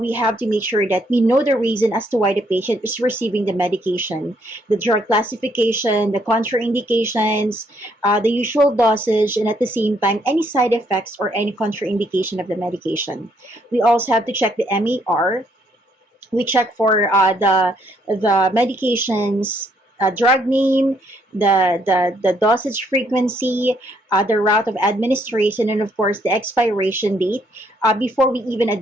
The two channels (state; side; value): normal; both; correlation 0.70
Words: have to make sure that we know the reason as to why the patient is receiving the medication, the drug classification, the contraindications, the usual dosage, and at the same time, any side effects or any contraindication of the medication. We also have to check the MAR. We check for the medications drug name, the dosage frequency, the route of administration, and of course the expiration date before we even